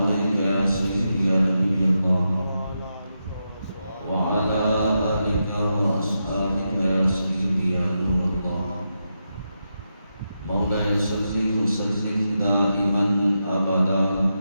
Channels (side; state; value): both; inverted; correlation -0.86